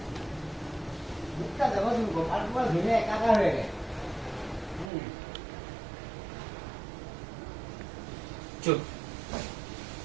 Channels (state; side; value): drops out; left; at 4.9 s